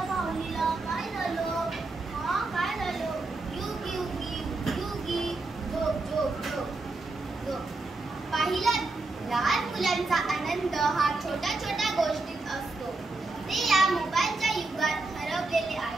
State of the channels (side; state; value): left; quieter; 3.3 dB